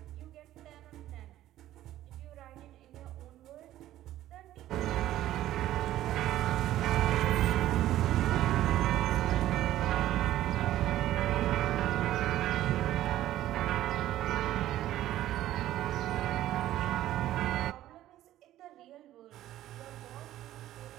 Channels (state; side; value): quieter; left; 13.7 dB